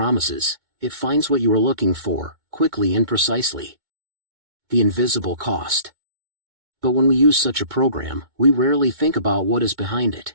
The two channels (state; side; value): late; left; 2.2 ms